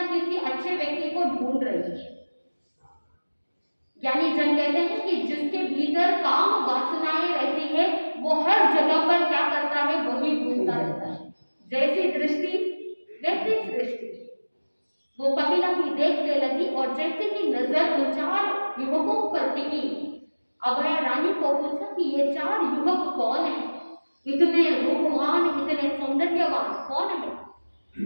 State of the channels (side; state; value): both; inverted; correlation -1.00